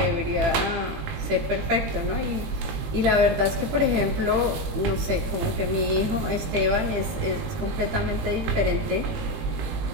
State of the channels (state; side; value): late; left; 18 ms